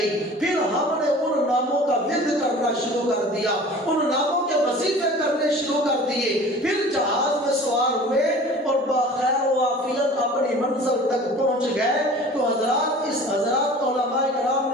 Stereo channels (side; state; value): both; normal; correlation 0.43